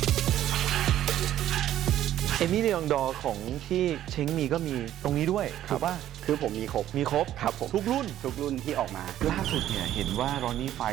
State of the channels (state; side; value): quieter; left; 12.2 dB